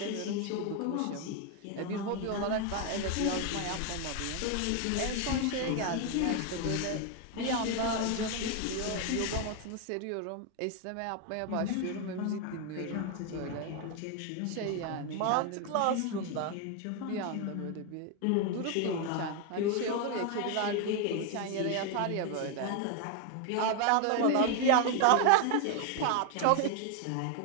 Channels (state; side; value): different; both; correlation 0.01